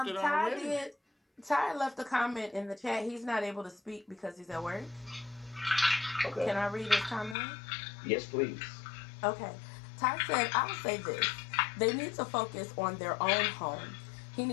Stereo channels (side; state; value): right; drops out; at 7.4 s